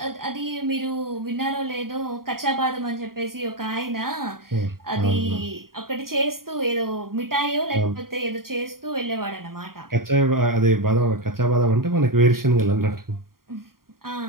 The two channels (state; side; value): late; left; 0.92 ms